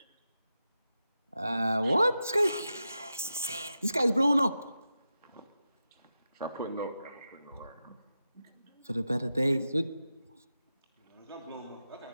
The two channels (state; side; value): inverted; both; correlation -0.90